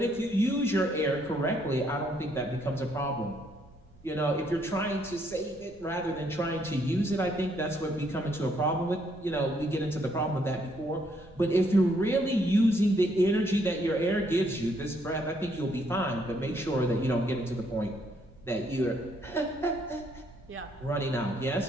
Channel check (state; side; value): normal; both; correlation 0.70